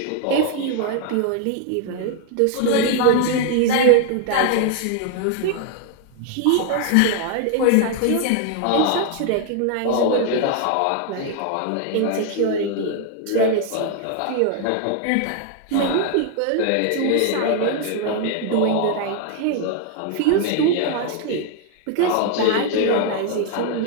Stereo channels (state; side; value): different; both; correlation 0.00